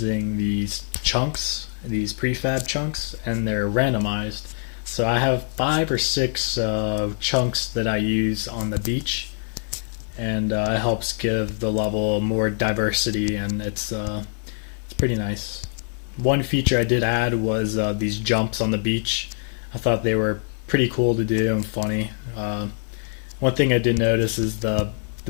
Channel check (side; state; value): right; silent; 61 dB below the other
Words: these chunks, these prefab chunks, and they're randomized. So I have 5 or 6 chunks that I use on the beach, and it helps give the level more diversity, and it's pretty nice. One feature I did add was these jumps on the beach. I thought they were pretty cool to do and funny. One thing I did notice is the